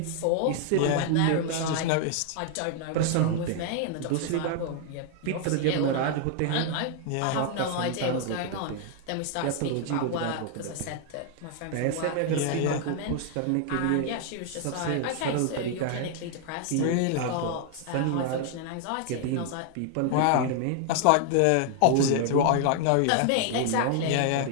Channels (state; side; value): different; both; correlation 0.00